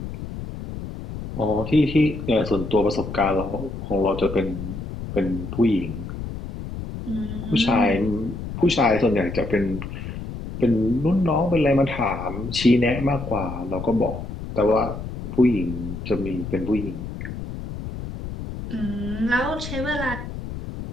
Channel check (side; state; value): left; noise; rumble, 8 dB below the sound